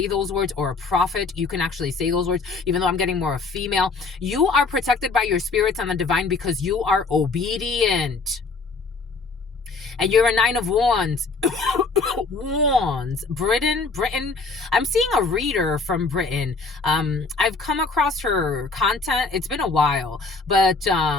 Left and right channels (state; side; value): quieter; right; 4.1 dB